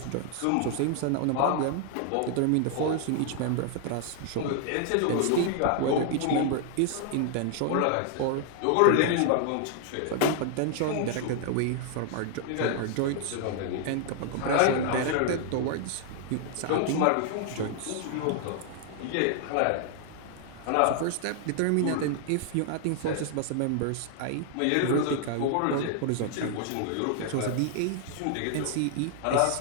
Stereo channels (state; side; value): different; both; correlation 0.00